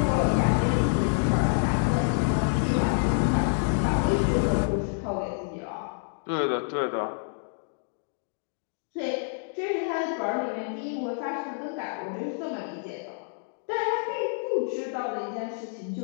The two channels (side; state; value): right; silent; digital silence